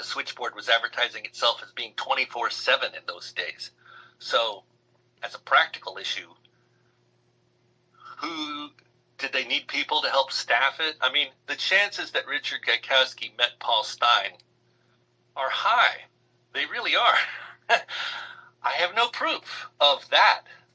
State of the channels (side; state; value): both; identical; correlation 1.00